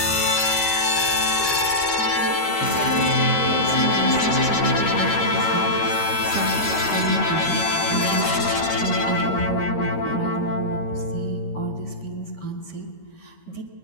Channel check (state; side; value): late; right; 13 ms